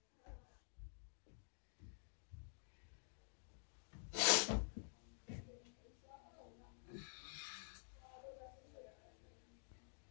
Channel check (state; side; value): silent; right; digital silence